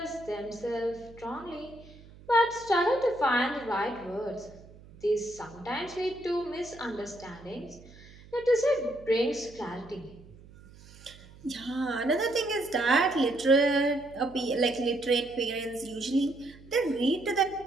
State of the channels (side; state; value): right; noise; hum, 21 dB below the sound